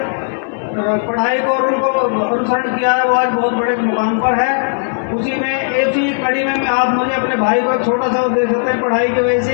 पढ़ाई को और उनको अनुसरण किया है, वो आज बहुत बड़े मुकाम पर है। उसी में ऐसी कड़ी में आप मुझे अपने भाई को छोटा सा वो दे सकते हैं। पढ़ाई की वजह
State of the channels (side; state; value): right; silent; 69 dB below the other